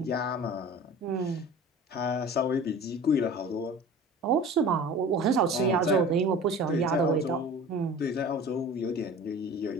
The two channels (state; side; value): normal; both; correlation 0.40